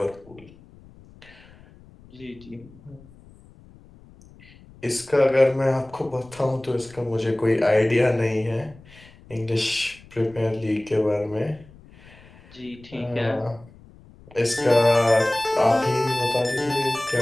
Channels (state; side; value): noise; left; rumble, 24 dB below the sound